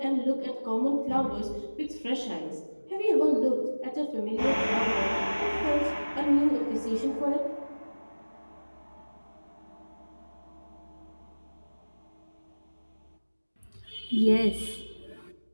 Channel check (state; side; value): inverted; both; correlation -1.00